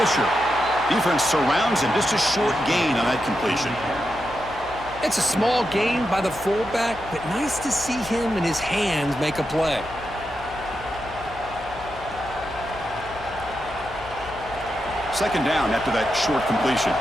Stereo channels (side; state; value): left; noise; hum, 16 dB below the sound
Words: Defense surrounds him, just a short gain on that completion. It's a small gain by the fullback, but nice to see him and his hands make a play. Second down after that short completion.